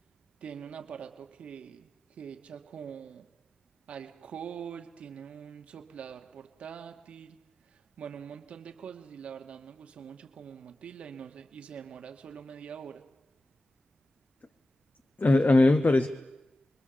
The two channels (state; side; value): normal; both; correlation 0.94